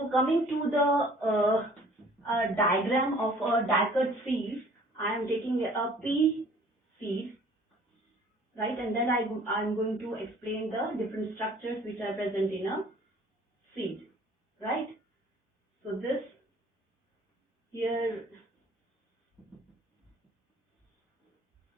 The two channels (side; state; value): both; normal; correlation 0.53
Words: coming to the diagram of a dicot seed, I am taking a pea seed, right? And then I'm going to explain the different structures which are present in a seed, right? So this here,